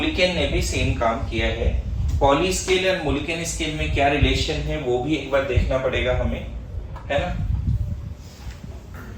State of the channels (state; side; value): identical; both; correlation 1.00